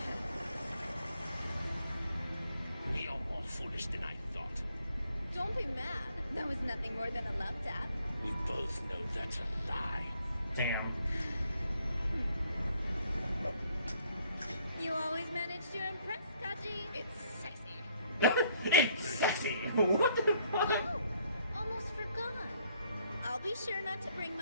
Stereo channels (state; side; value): inverted; both; correlation -0.66